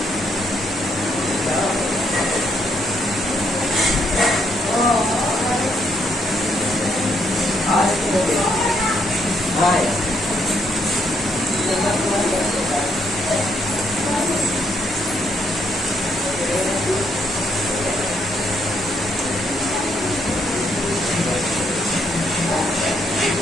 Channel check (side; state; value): both; normal; correlation 0.73